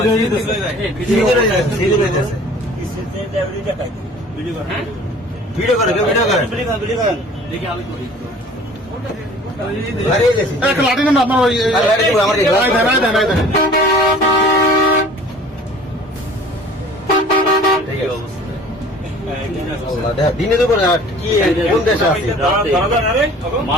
ভিডিও করে লাঠি নেন আপনার ওই দিনে দুপুরে কি কোন দেশে আছে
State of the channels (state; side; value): normal; both; correlation 0.48